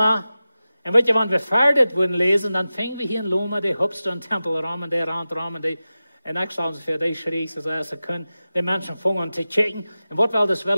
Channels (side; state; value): both; inverted; correlation -0.95